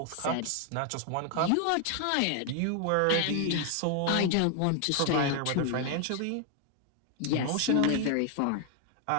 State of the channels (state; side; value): different; both; correlation 0.00